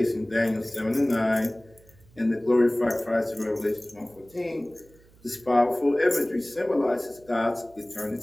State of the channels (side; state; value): right; noise; hum, 28 dB below the sound